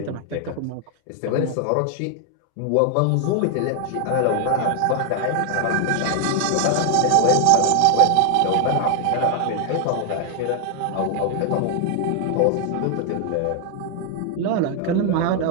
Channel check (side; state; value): both; different; correlation 0.00